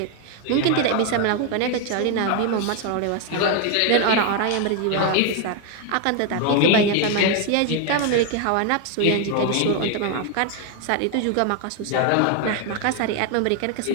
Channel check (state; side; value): different; both; correlation 0.01